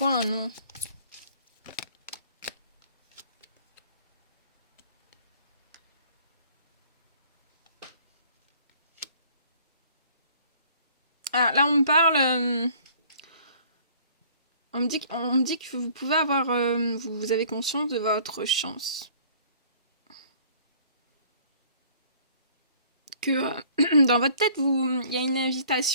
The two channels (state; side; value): inverted; both; correlation -0.55